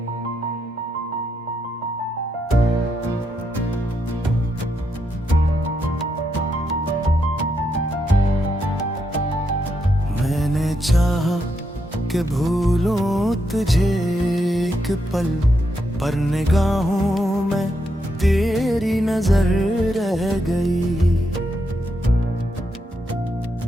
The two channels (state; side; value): normal; both; correlation 0.81